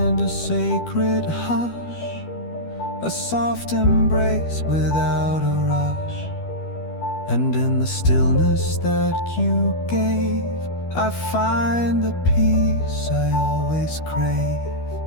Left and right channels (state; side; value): late; right; 12 ms